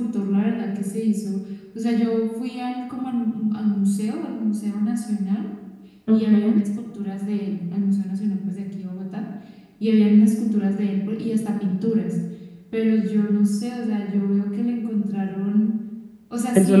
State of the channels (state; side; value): identical; both; correlation 1.00